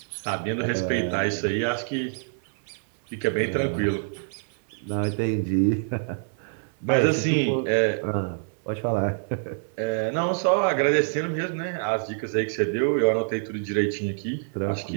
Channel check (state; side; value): silent; left; digital silence